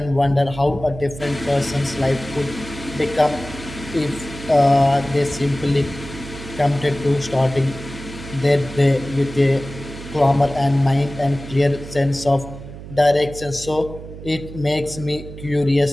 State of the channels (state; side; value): noise; right; hum, 13 dB below the sound